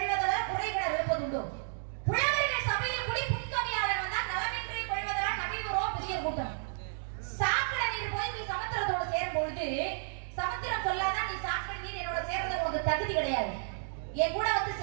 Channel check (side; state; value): left; silent; digital silence